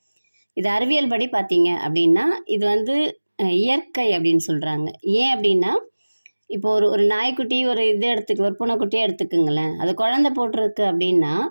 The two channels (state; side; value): inverted; both; correlation -1.00